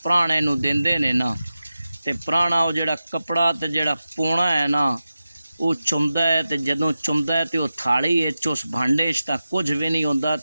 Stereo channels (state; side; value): inverted; both; correlation -0.93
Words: पुराने नूं देंदे ने ना, ते पुराना वो जिहड़ा कपड़ा ते जिहड़ा पौना है ना वो चुमदा है। ते जदों चुमदा है तो वो थाली उस भांडे तां कुछ भी नहीं होंदा।